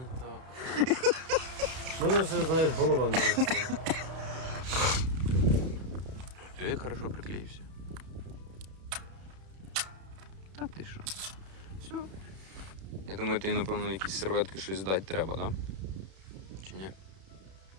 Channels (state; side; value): late; left; 31 ms